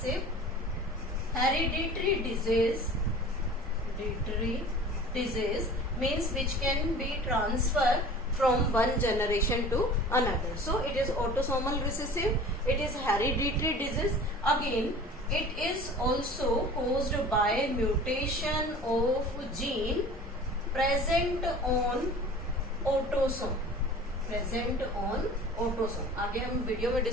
hereditary disease means which can be transferred from one generation to another. So it is autosomal recessive, it is hereditary disease. Again, it is also caused by mutation of gene present on autosome. आगे हम वीडियो में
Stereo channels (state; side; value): normal; both; correlation 0.42